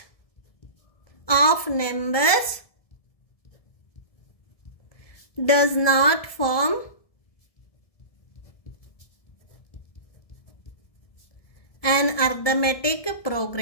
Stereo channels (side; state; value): right; late; 1.7 ms